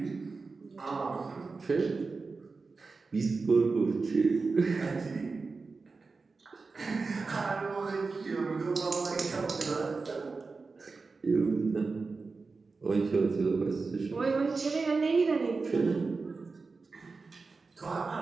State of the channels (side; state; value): left; quieter; 4.2 dB